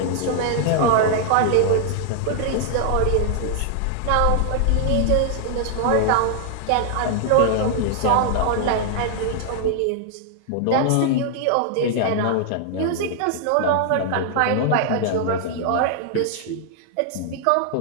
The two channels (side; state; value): both; different; correlation 0.00